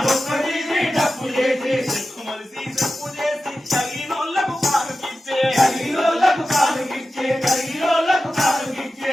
డొక్కదీరి డప్పు చేసి శర్మములిసి చెప్పు చేసి తగినోళ్ళకు కానుకిచ్చే తగినోళ్ళకు కానుకిచ్చే తగినోళ్ళకు కానుకిచ్చే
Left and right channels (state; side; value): normal; both; correlation 0.93